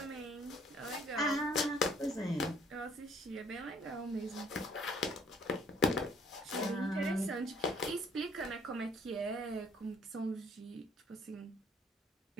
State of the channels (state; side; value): normal; both; correlation 0.60